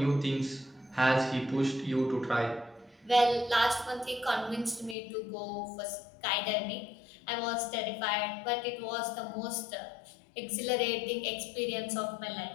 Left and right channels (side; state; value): right; drops out; at 5.0 s